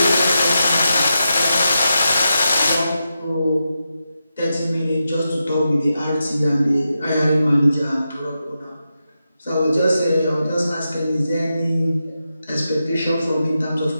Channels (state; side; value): inverted; both; correlation -0.88